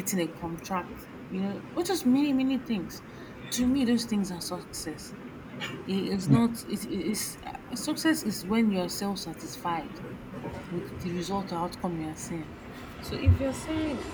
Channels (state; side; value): identical; both; correlation 1.00